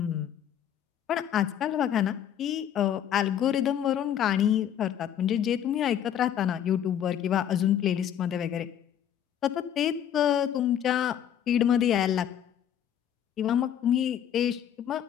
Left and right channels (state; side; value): quieter; right; 9.9 dB